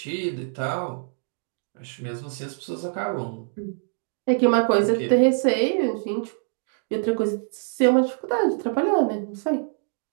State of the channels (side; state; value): left; silent; digital silence